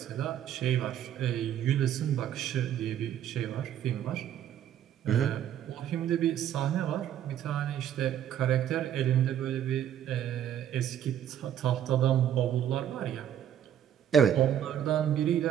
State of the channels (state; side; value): quieter; left; 10.3 dB